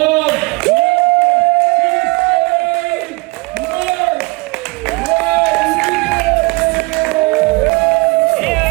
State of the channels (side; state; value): left; quieter; 25.6 dB